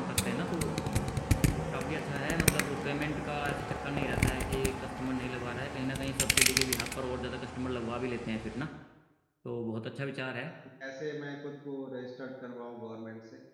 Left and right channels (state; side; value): identical; both; correlation 1.00